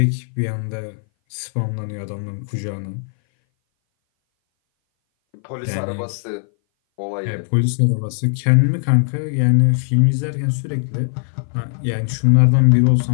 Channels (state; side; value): silent; right; 60 dB below the other